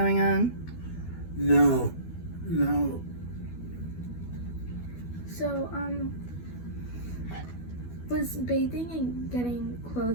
on. No. So was bathing and getting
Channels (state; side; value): late; right; 12 ms